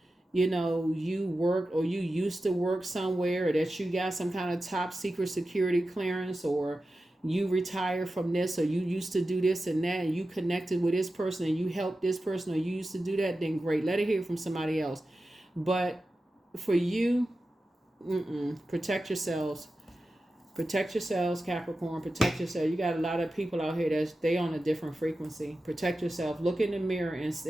you know you work or you used to work somewhere, or that you got some kind of top secret security clearance, or you retire from this, or you used to do this and that, and you connected with this person and you helped this person, or you used to do that, then great, let it hear from somebody else. But for you, protect yourselves. Protect yourselves, Capricorn. Protect yourself. You got a lot of people out here that they on a different frequency. Protect yourself. Look in the mirror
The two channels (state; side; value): normal; both; correlation 0.93